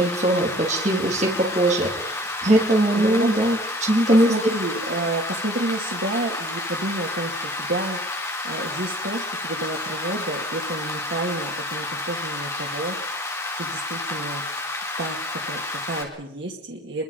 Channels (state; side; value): normal; both; correlation 0.48